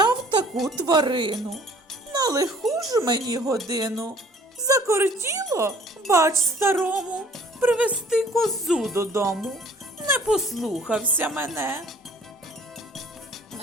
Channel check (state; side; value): normal; both; correlation 0.54